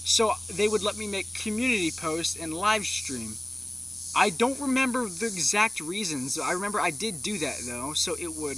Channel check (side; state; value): left; noise; rumble, 29 dB below the sound